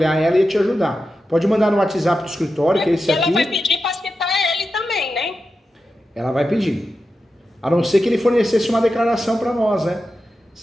ela e te ajudar. Pode mandar no WhatsApp do escritório, que é esse aqui. Ela vai pedir para citar ele também, né? Ela vai pedir. A não ser que ele fornecesse uma declaração para nós, né?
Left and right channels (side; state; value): both; normal; correlation 0.91